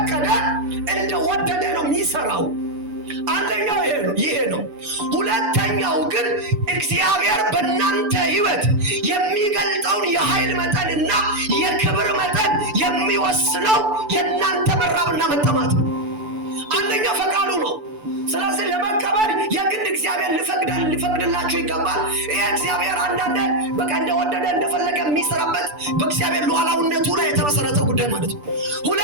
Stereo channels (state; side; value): late; left; 6.9 ms